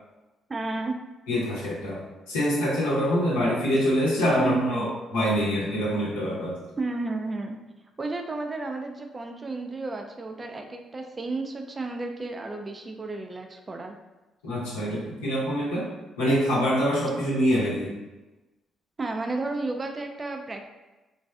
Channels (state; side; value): normal; both; correlation 0.73